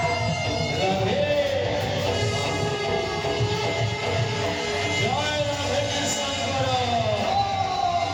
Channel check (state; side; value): identical; both; correlation 1.00